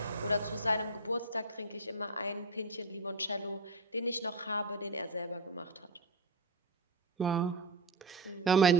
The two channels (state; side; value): quieter; left; 3.1 dB